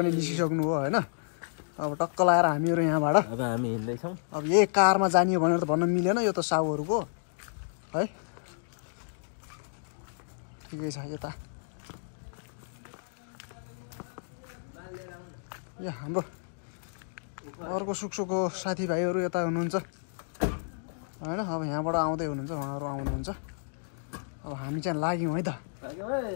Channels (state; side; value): silent; right; digital silence